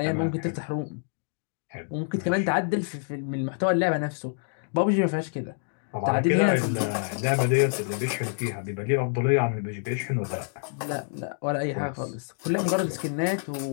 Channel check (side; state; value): right; silent; digital silence